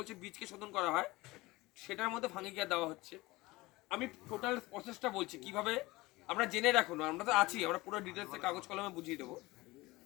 বীজকে শোধন করা হয়, সেটার মধ্যে ফাঙ্গি কেয়ার দেওয়া হচ্ছে। আমি টোটাল প্রসেসটা বলছি কিভাবে আমরা জেনে রাখুন, আমরা তো আছি, আমরা পুরো ডিটেলসে কাগজ কলমে বুঝিয়ে দেবো।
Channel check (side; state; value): right; quieter; 20.9 dB